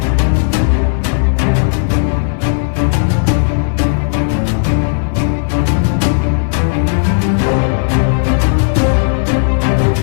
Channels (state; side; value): silent; right; 71 dB below the other